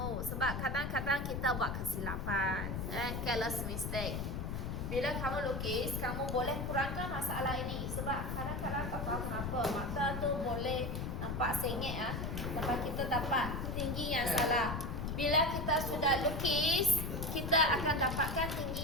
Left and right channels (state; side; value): noise; left; rumble, 3 dB below the sound